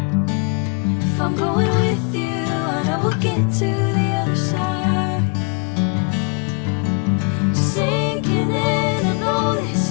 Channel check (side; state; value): right; quieter; 33.8 dB